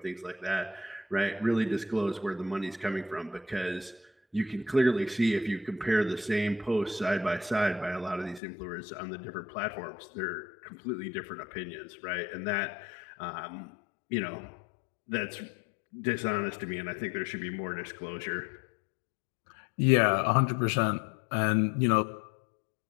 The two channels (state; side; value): drops out; right; at 8.4 s